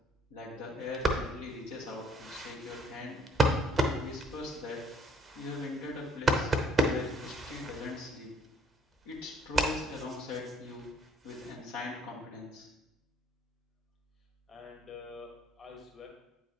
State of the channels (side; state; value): both; normal; correlation 0.63